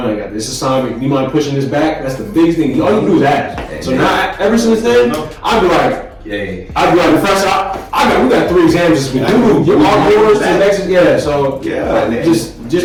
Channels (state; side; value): identical; both; correlation 1.00